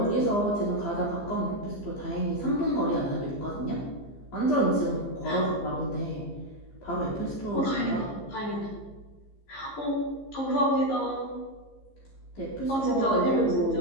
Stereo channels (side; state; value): right; late; 15 ms